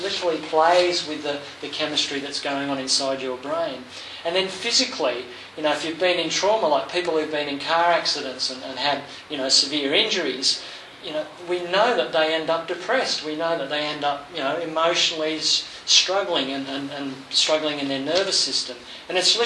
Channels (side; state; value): both; identical; correlation 1.00